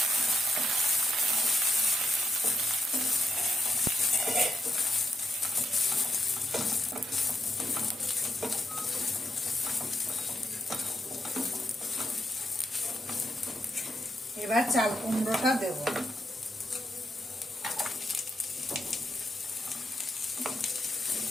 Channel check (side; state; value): both; normal; correlation 0.83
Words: এবার চাল কুমড়োটা দেব।